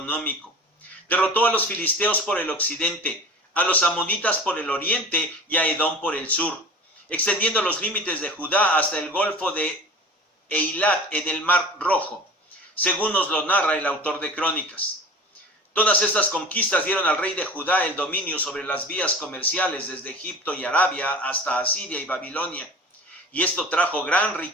Derrotó a los filisteos por el occidente, a los amonitas por el oriente y a Edom por el sur, extendiendo los límites de Judá hasta el golfo de Eilat en el Mar Rojo, según nos lo narra el autor de Crónicas. Todas estas conquistas dieron al rey de Judá el dominio sobre las vías comerciales desde Egipto y Arabia hasta Asiria y Babilonia. Y esto trajo gran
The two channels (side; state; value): both; normal; correlation 0.38